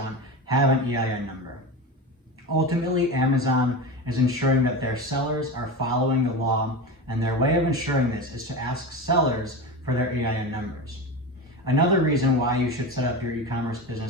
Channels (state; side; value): normal; both; correlation 0.25